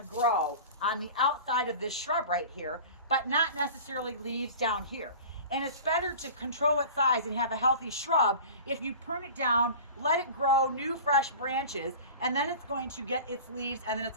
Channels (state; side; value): inverted; both; correlation -0.37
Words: grow on the outside of this shrub right here, but not necessarily leaves down here. And it's better to control its size and have a healthy shrub if you prune it down, let it grow new fresh branches, and then it's going to get its leaves, and then